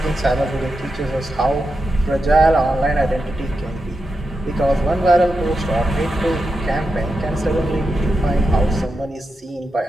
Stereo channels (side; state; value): both; normal; correlation 0.88